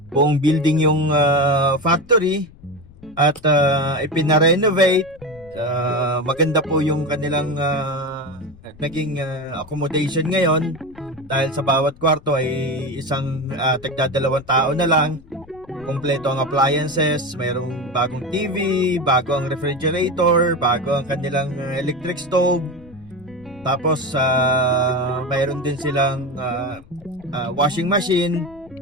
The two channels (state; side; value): noise; left; rumble, 23 dB below the sound